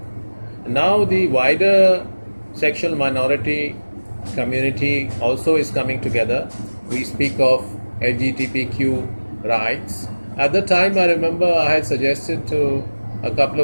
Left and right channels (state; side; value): inverted; both; correlation -1.00